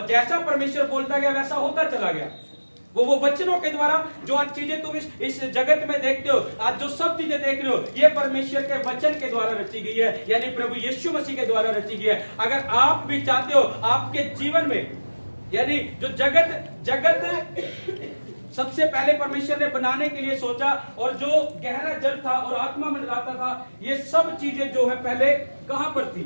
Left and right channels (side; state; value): both; inverted; correlation -1.00